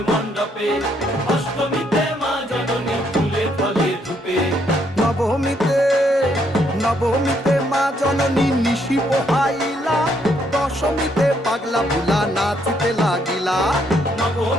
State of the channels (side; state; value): both; normal; correlation 0.72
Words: মণ্ডপে, অষ্টমীতে মা জননী ফুলে ফলে ধূপে, নবমীতে মা জননী নিশি পোহাইলা, দশমীতে পাগলা ভুলা নাচিতে লাগিলা,